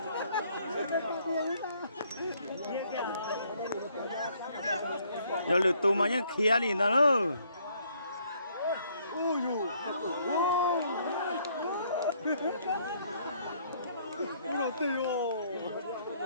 giờ lượt tù mà nhá khía đi nó nữa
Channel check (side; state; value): both; inverted; correlation -0.66